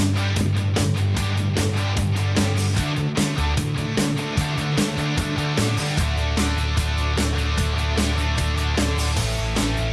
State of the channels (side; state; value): both; identical; correlation 1.00